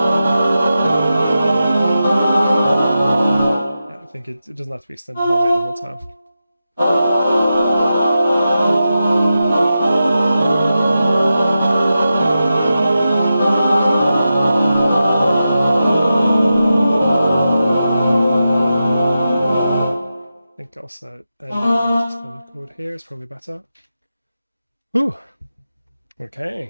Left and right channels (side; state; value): both; inverted; correlation -0.91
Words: I think it doesn't have to be extended harmony the whole time. I think also ending on a suspended chord here is probably better. Ooh.